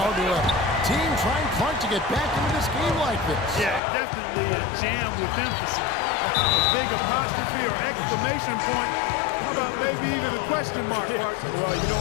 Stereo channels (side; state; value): right; drops out; at 3.8 s